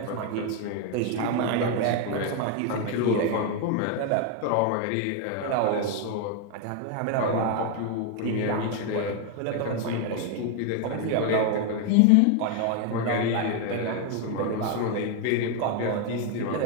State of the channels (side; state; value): both; different; correlation 0.01